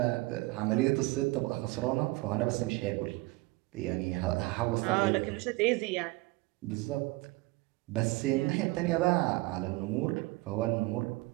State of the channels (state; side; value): quieter; left; 22.5 dB